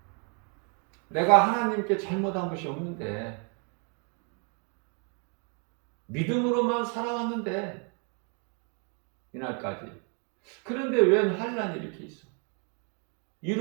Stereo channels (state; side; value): quieter; left; 37.5 dB